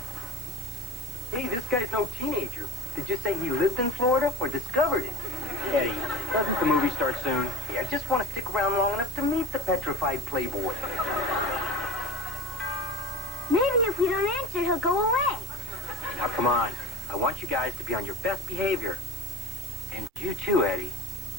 Hey, this guy's no teenager. Did you say he lived in Florida or discovered it? Eddie, doesn't the movie start soon? Yeah, I just want to stick around long enough to meet the petrified playboy. Maybe if we don't answer, he'll go away. Now, come on. I want you guys to be on your best behavior. And you too, Eddie.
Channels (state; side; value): normal; both; correlation 0.34